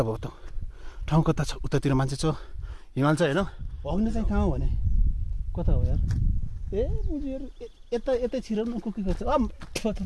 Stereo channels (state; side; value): identical; both; correlation 1.00